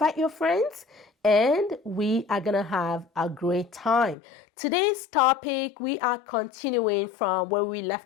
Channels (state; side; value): drops out; right; at 4.2 s